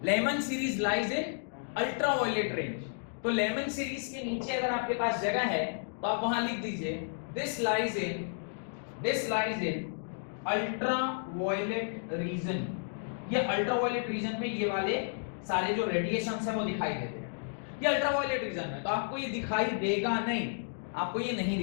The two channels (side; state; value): right; silent; digital silence